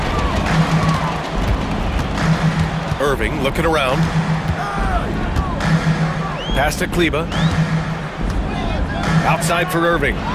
Irving looking around. Pass to Kleba. Outside for Irving.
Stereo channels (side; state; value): both; identical; correlation 1.00